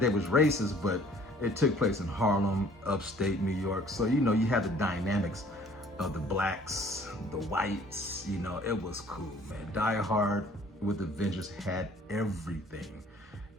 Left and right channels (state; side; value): normal; both; correlation 0.55